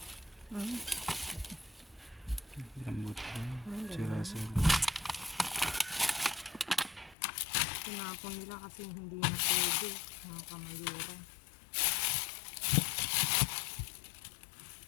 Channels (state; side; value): drops out; right; at 7.2 s